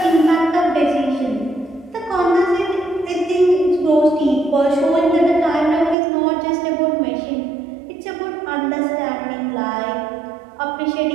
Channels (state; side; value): drops out; left; at 6.0 s